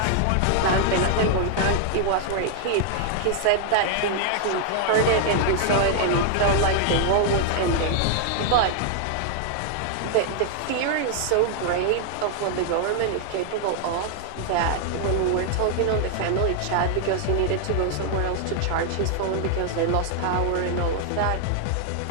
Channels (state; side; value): different; both; correlation 0.00